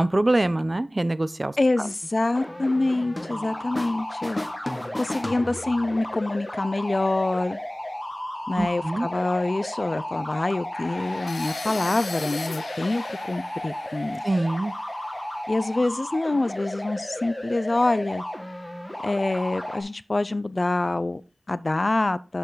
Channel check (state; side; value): normal; both; correlation 0.98